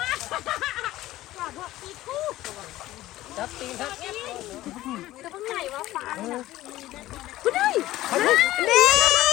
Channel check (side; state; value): right; quieter; 15.8 dB